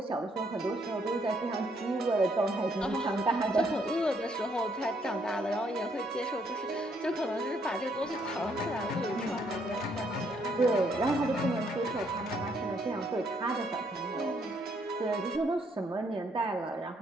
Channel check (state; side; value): normal; both; correlation 0.70